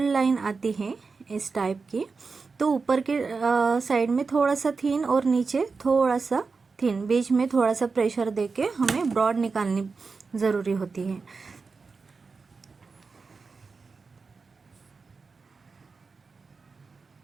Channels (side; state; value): left; quieter; 4.6 dB